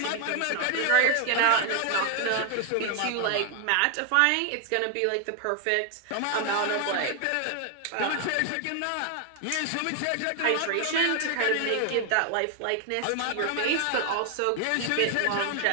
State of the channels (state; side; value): different; both; correlation 0.01